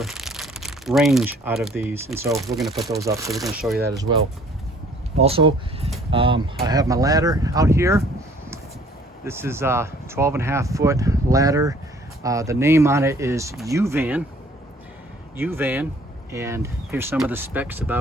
range out of these, and so we're going to put those up. So we're going to show you that as well. Also, I have my ladder out here. This is a 12.5 foot ladder. The name on it is U-Van, and here's some of the specs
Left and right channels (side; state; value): both; normal; correlation 0.56